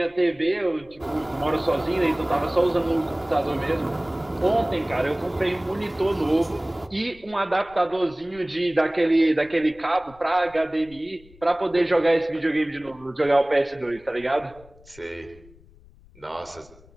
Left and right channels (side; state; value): left; noise; rumble, 25 dB below the sound